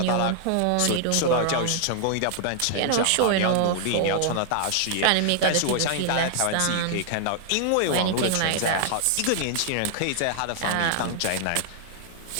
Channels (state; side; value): different; both; correlation 0.00